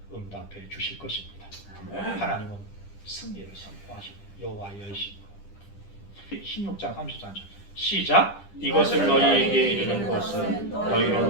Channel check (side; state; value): right; late; 10 ms